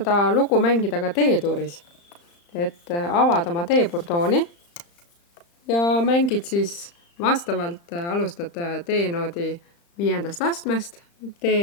lugu mängida ka D-tuuris, et avad oma D-burdooni ja mängid siis vastavalt alustad D-noodi 5. astmest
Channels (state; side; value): late; right; 35 ms